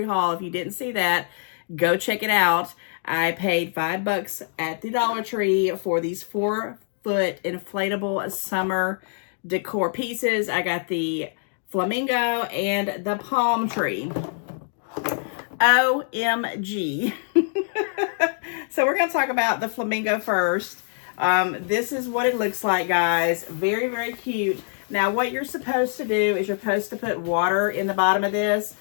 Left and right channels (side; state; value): right; silent; digital silence